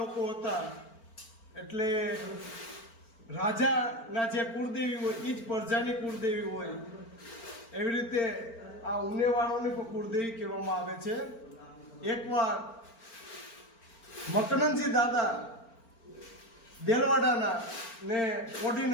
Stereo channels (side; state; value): right; late; 4.4 ms